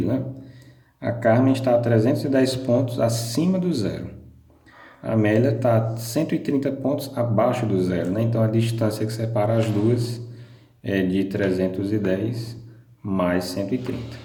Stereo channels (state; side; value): identical; both; correlation 1.00